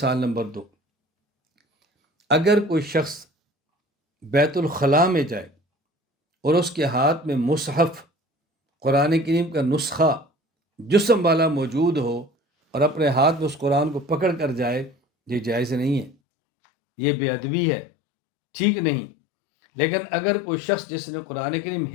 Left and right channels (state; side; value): drops out; right; at 16.2 s